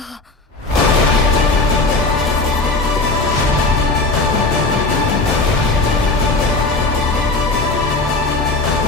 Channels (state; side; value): quieter; right; 3.4 dB